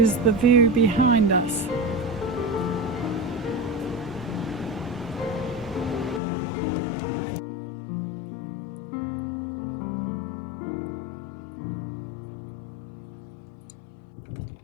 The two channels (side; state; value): right; drops out; at 6.2 s